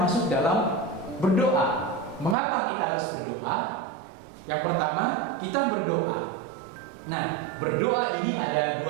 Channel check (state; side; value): drops out; left; at 2.4 s